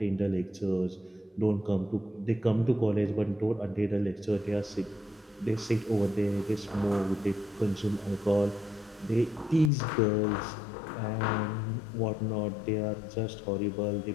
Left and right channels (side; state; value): right; drops out; at 9.7 s